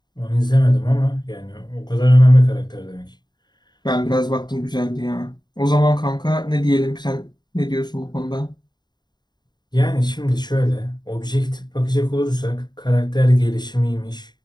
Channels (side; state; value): right; late; 0.21 ms